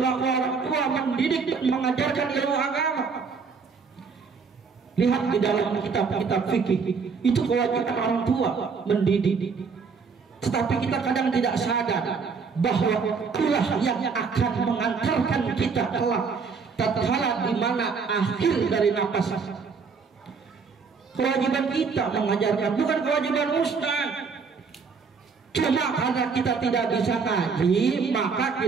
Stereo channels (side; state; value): left; quieter; 5.3 dB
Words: orang tua mendidik dan mengajarkan ilmu agama. Lihat di dalam kitab-kitab fikih, itu kewajiban orang tua mendidik. Tetapi kita kadang tidak sadar bahwa itulah yang akan mengantarkan kita kelak tatkala di mana akhir dari nafas. Kewajiban kita mengajarkan, bukan kewajiban ustaz. Cuma karena kita tidak bisa ngaji, maka